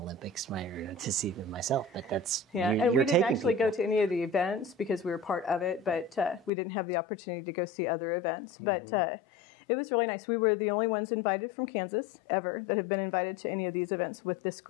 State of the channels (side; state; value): right; drops out; at 6.5 s